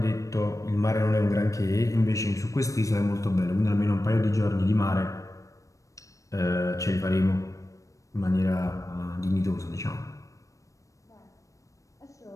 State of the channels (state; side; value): late; right; 0.16 ms